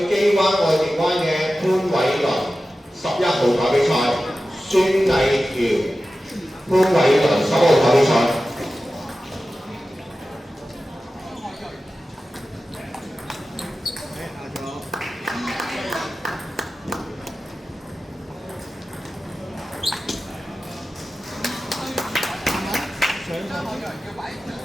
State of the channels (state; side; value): normal; both; correlation 0.94